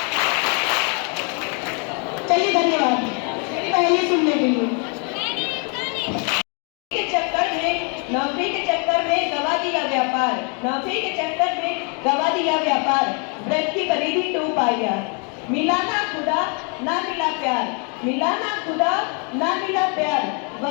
चलिए धन्यवाद पहले सुनने के लिए। नौकरी के चक्कर में गवा दिया व्यापार, नौकरी के चक्कर में गवा दिया व्यापार, व्रत की परिधि टूट पाया। मिला ना खुदा ना मिला प्यार, मिला ना खुदा ना मिला प्यार,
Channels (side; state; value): right; quieter; 36.7 dB